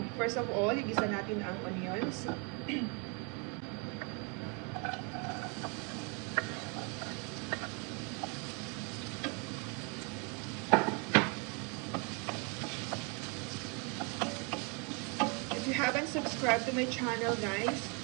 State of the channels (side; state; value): left; quieter; 33.7 dB